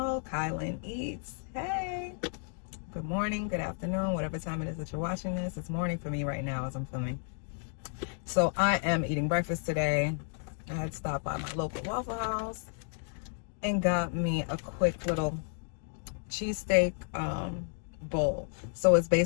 Kailynn Eats. Hey, good morning, good afternoon, whatever time it is that you're watching this. It's morning for me right now as I'm filming. So I am eating breakfast today. I had stopped by my local Waffle House and got me a quick little cheesesteak bowl. So it's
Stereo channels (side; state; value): right; silent; 56 dB below the other